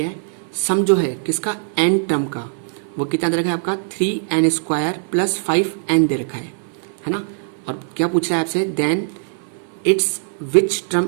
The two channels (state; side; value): silent; left; 58 dB below the other